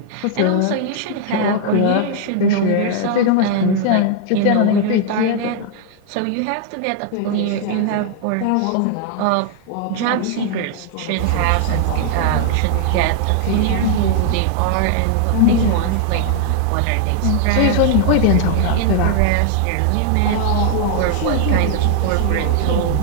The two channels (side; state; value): both; different; correlation 0.00